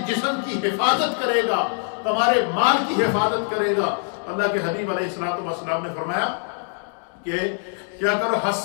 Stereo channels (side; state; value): right; silent; 58 dB below the other